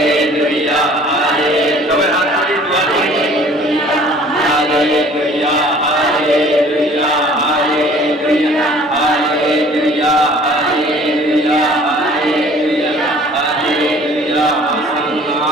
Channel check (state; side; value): normal; both; correlation 0.51